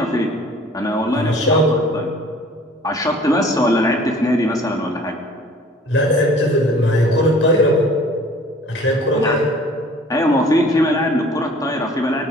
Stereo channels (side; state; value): both; normal; correlation 0.50